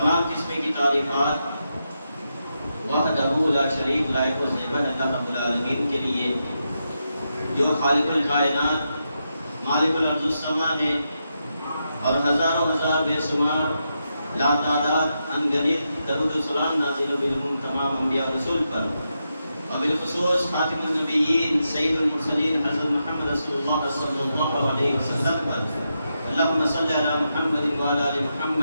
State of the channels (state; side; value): inverted; both; correlation -0.85